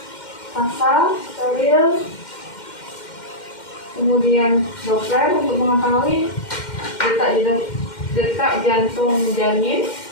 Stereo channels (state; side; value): late; right; 2.1 ms